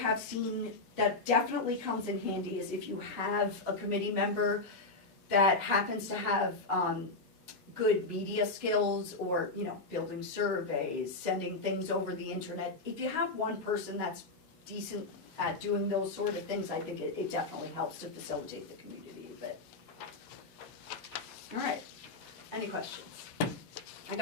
seen that definitely comes in handy is if you have a committee member that happens to have good media skills or, you know, building surveys, sending things over the internet. If you have one person that's decent at doing those sort of things, I think it definitely helps to facilitate the community a bit. All right, any questions? I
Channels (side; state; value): right; quieter; 3.4 dB